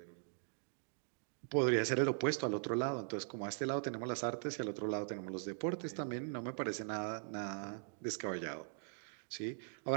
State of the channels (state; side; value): silent; left; digital silence